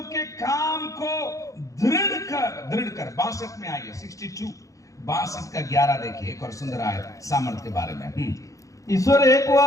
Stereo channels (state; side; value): late; right; 0.16 ms